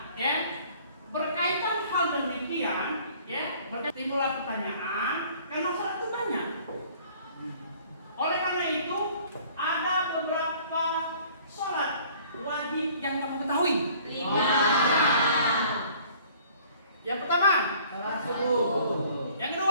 ya, berkaitan hal demikian, timbullah pertanyaan karena sholat itu banyak. Oleh karena itu ada beberapa sholat wajib yang kamu ketahui. 5. Yang pertama, Salat subuh. yang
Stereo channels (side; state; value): both; inverted; correlation -0.54